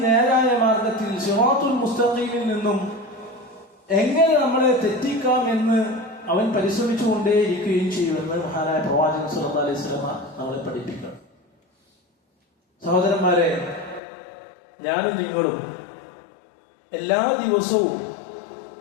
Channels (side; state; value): right; drops out; at 14.0 s